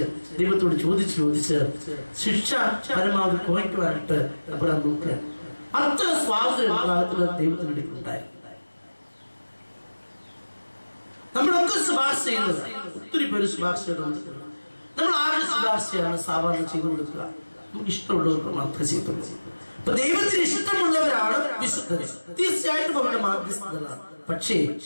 ദൈവത്തോട് ചോദിച്ച് ശിക്ഷ പരമാവധി കുറയ്ക്കുവാനായിട്ട് അബ്രഹാം നോക്കുക. അത്ര സ്വാതന്ത്ര്യം ദൈവത്തിന് ഉണ്ടായി. നമ്മളൊക്കെ ശുപാർശ ചെയ്യുന്നത്, ഒത്തിരി പേര് ശുപാർശ ചെയ്തുകൊടുക്കുക. നമ്മൾ ആരുടെ ശുപാർശയാണ് സാധാരണ ചെയ്തു കൊടുക്കുക? നമുക്ക് ഇഷ്ടമുള്ളവർക്ക് മാത്രമേ ചെയ്തുള്ളൂ. അപ്പൊ ദൈവത്തിന് ഇഷ്ടമുള്ളവരാണ് വിശുദ്ധർ. തീർച്ചയായിട്ടും അവരുടെ മാധ്യസ്ഥതകളാണ്. പക്ഷേ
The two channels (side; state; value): both; inverted; correlation -1.00